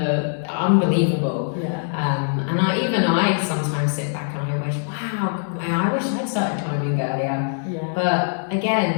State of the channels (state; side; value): silent; right; 64 dB below the other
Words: unbelievable. Yeah. And I sometimes sit back and I wish, wow, I wish I'd started climbing earlier. Yeah. But